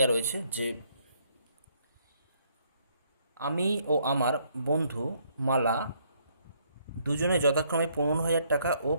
রয়েছে যে আমি ও আমার বন্ধু মালা দুজনে যথাক্রমে 15,000 টাকা ও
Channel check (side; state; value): both; inverted; correlation -0.68